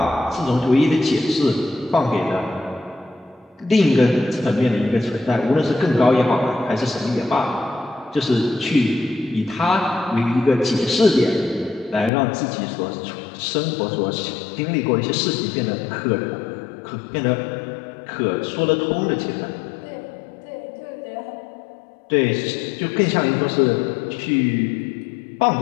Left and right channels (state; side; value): drops out; right; at 12.1 s